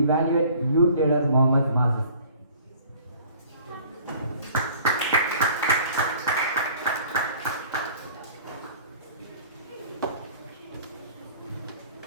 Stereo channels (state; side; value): inverted; both; correlation -0.50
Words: Youth Leader Mohammed Mazin.